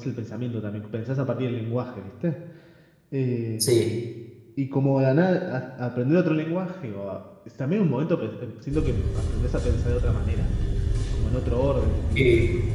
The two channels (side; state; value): both; identical; correlation 1.00